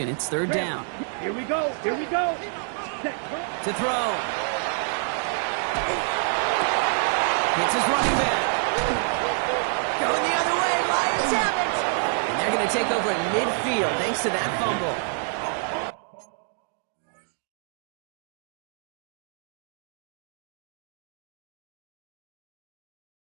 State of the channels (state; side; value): silent; left; 60 dB below the other